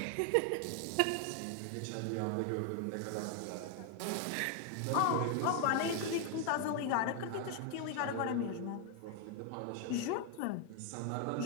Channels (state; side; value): different; both; correlation 0.00